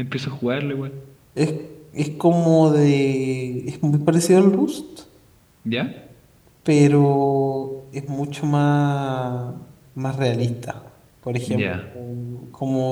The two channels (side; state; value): both; identical; correlation 1.00